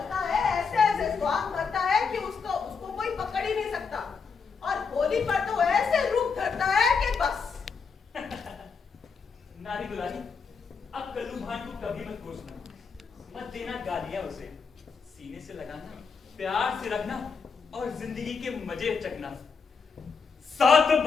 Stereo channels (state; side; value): quieter; right; 5.4 dB